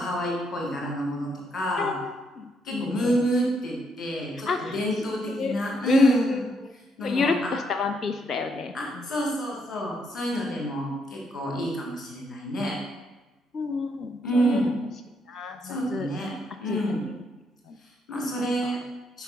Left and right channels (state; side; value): normal; both; correlation 0.75